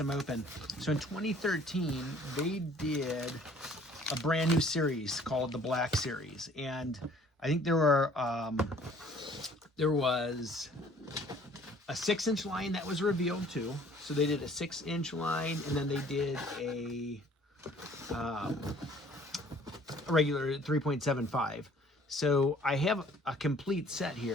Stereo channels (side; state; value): both; normal; correlation 0.55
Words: open. So in 2013, they did a brand new series called the Black Series, and I think there was a 6-inch line that was revealed too. So they did a 6-inch line, and then they did a regular 3.75. So I have a complete set